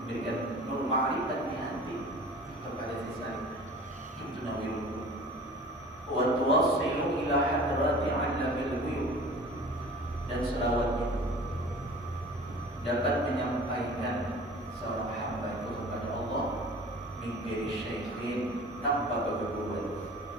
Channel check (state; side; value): normal; both; correlation 0.43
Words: nur ma'rifat di hati kepada sisanya. Tunawwirul qulub. Wa tuwassilu ila hadrati 'allamil ghuyub. Dan selawat itu dapat menyampaikan seorang hamba itu kepada Allah min ghairi syai'in, tanpa bergurau.